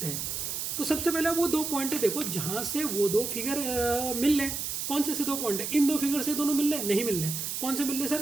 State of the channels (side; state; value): right; noise; hiss, 3 dB below the sound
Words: हैं, तो सबसे पहले वो 2 पॉइंट देखो जहाँ से वो 2 फिगर मिल रहे हैं। कौन से 2 पॉइंट है? इन 2 फिगर से दोनों मिल रहे हैं? नहीं मिल रहे हैं। कौन से मिल रहे हैं